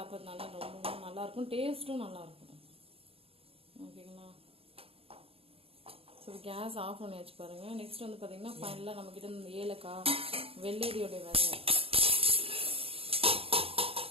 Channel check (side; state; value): left; late; 0.28 ms